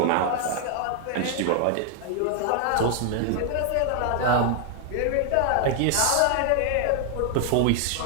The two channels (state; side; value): different; both; correlation 0.00